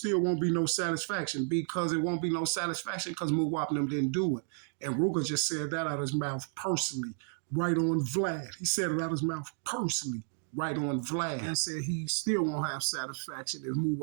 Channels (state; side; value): silent; left; 56 dB below the other